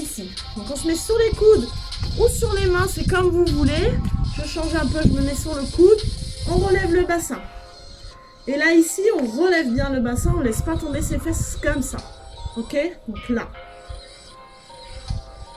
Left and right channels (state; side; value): identical; both; correlation 1.00